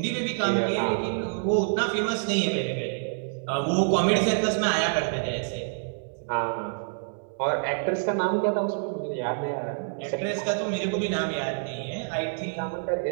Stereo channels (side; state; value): left; silent; digital silence